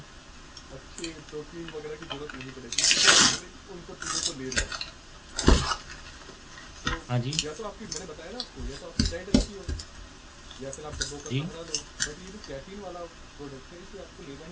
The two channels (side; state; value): both; identical; correlation 1.00